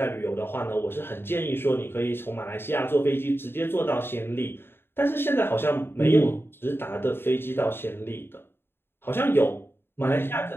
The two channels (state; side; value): late; right; 0.11 ms